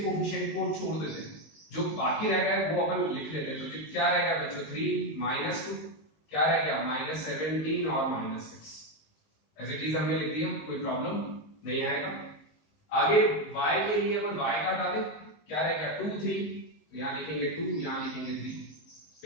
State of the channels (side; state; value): right; late; 19 ms